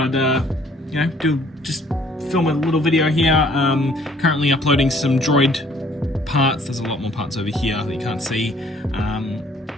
film a little video here. Currently uploading some droid parts. There's a lot more parts over here that you can't see.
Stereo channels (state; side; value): normal; both; correlation 0.60